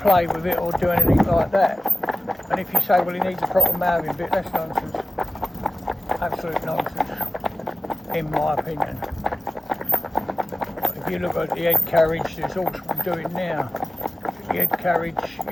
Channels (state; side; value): normal; both; correlation 0.97